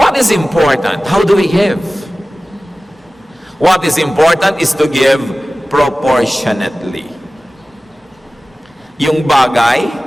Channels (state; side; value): normal; both; correlation 0.97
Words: is important? How do we give? What is important is to give proportionately. Yung bagay,